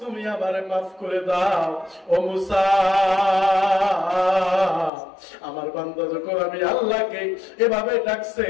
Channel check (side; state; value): right; drops out; at 4.9 s